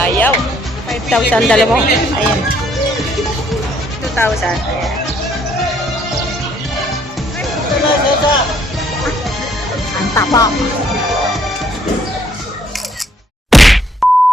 5,000 dalawa. Ayan. 2,000. Ayan. Ang tapa.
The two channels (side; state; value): both; normal; correlation 0.66